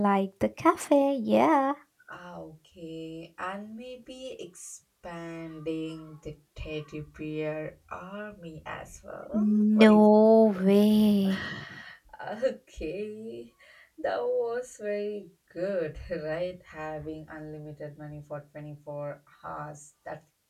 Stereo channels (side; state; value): both; identical; correlation 1.00